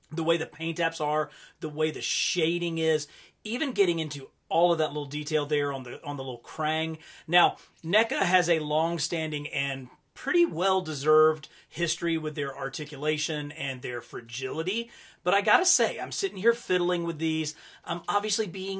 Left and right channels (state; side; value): identical; both; correlation 1.00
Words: the way the paint apps are, the way the shading is, even getting into all of that little detail there on the little Krang. Now, NECA has a long-standing and pretty well-deserved history with their articulation and their fragility. But I gotta say, I'm sitting here fiddling with these. I'm obviously